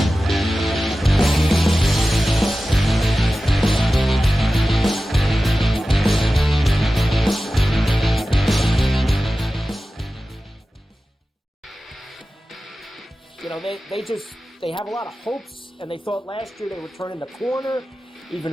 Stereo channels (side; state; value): both; normal; correlation 0.95